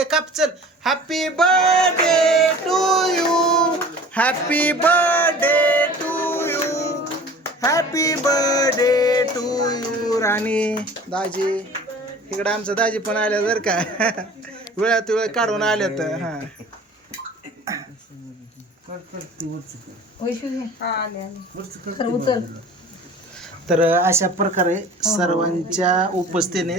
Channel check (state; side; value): normal; both; correlation 0.44